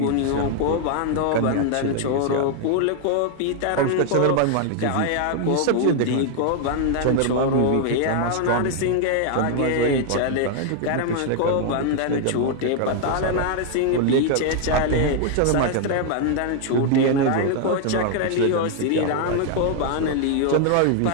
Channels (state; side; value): different; both; correlation 0.00